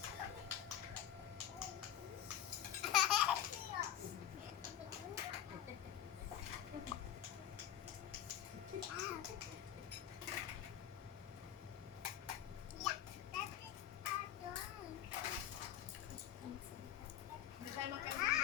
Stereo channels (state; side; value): quieter; right; 10.8 dB